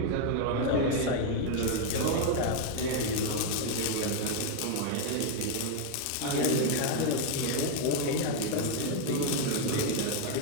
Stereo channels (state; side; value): different; both; correlation 0.01